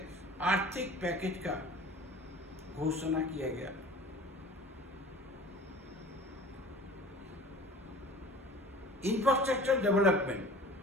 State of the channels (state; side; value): normal; both; correlation 0.44